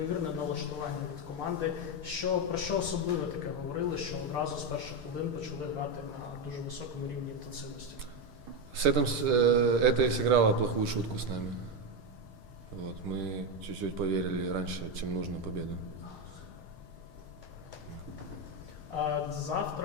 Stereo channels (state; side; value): late; left; 6.6 ms